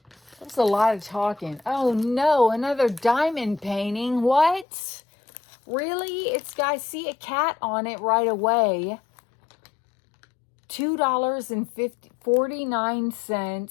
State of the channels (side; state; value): right; drops out; at 4.7 s